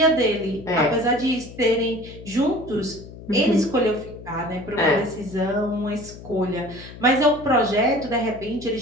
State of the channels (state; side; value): noise; left; hum, 16 dB below the sound